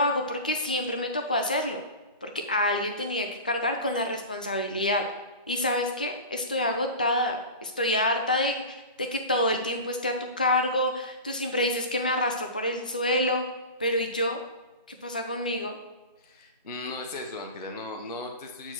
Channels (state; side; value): inverted; both; correlation -0.30